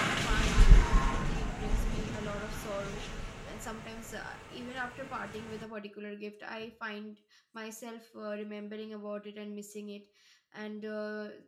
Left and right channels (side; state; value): both; identical; correlation 1.00